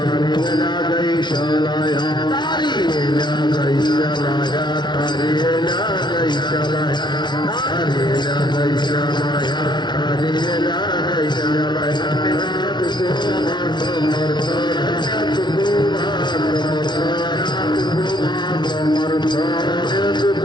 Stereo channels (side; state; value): right; late; 0.21 ms